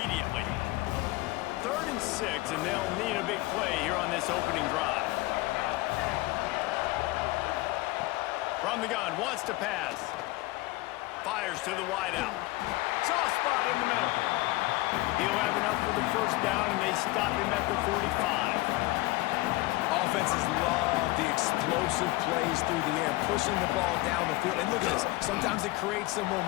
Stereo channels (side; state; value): right; quieter; 20.2 dB